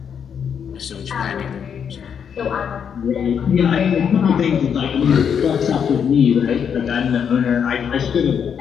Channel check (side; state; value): right; quieter; 7.6 dB